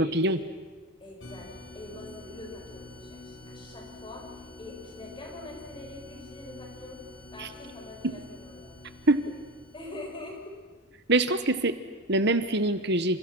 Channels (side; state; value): both; normal; correlation 0.24